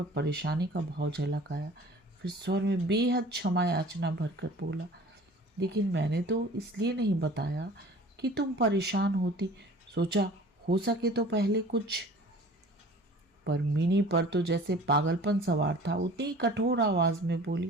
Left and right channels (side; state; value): both; normal; correlation 0.45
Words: परेशानी का भाव झलक आया। फिर स्वर में बेहद क्षमा याचना भरकर बोला, लेकिन मैंने तो इसलिए नहीं बताया कि तुम परेशान होती। सोचा हो सके तो पहले कुछ। पर मिनी पर तो जैसे पागलपन सवार था। उतनी कठोर आवाज में